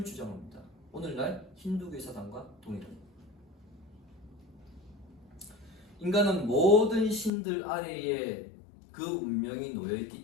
주장합니다. 오늘날 힌두교 사상과 동일합니다. 인간은 모든 신들 아래에 그 운명이 놓여있기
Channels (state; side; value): drops out; right; at 7.3 s